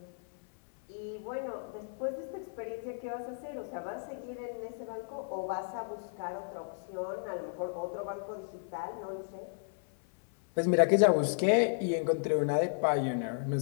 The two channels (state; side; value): silent; right; 55 dB below the other